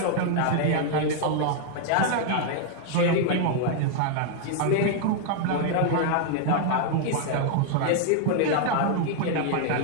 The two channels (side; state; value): both; different; correlation 0.00